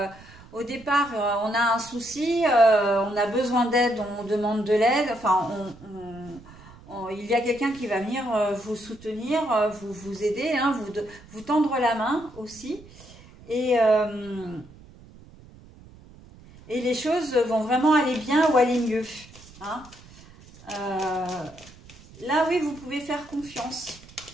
au départ, on a un souci, on a besoin d'aide, on demande de l'aide. Enfin, il y a quelqu'un qui va venir vous soutenir, vous aider, hein, vous tendre la main aussi. Et les choses vont vraiment aller bien ou aller mieux. Hein. Là, oui, vous pouvez faire confiance.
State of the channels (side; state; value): right; noise; rumble, 21 dB below the sound